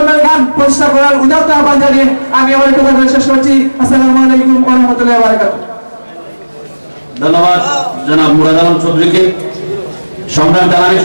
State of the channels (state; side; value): inverted; both; correlation -1.00